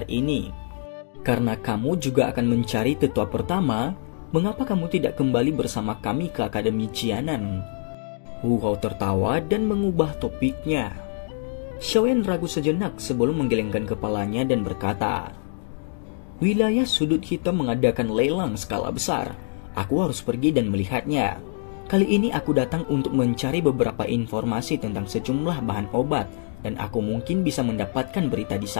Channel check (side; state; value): right; silent; digital silence